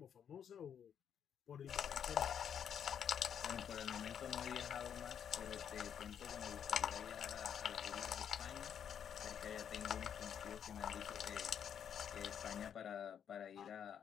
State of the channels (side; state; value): right; quieter; 8.4 dB